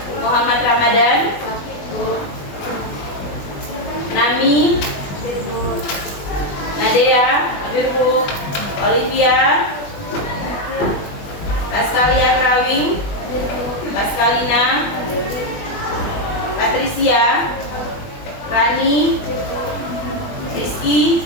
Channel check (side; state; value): right; late; 20 ms